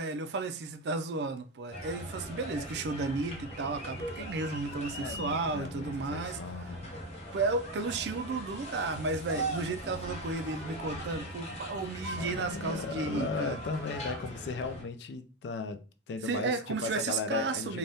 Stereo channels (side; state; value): both; normal; correlation 0.13